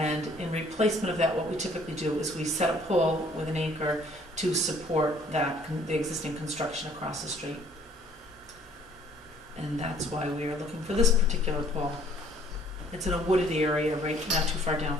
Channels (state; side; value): normal; both; correlation 0.58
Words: in replacement of that, what we typically do is we set a pole with an anchor to support that, the existing construction across the street. And that's why we are looking for this particular pole. It's in a wooded area, right, not too far down